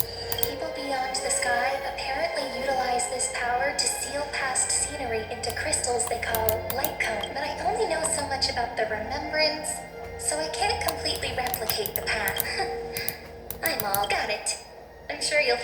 People beyond the sky apparently utilize this power to seal past scenery into crystals they call light cone, but I only know so much about the remembrance, so I can't completely replicate the path. I'm all got it. I'm sure you'll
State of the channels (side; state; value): both; identical; correlation 1.00